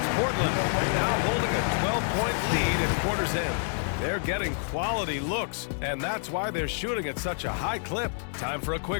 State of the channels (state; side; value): silent; right; 59 dB below the other